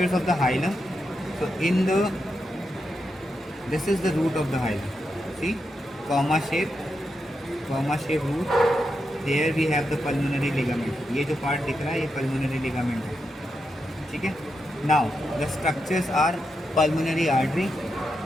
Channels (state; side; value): normal; both; correlation 0.85